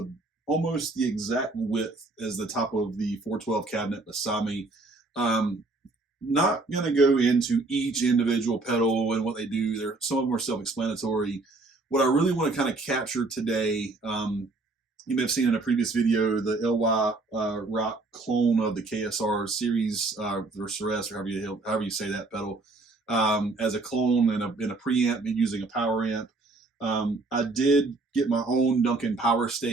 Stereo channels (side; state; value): left; quieter; 3.3 dB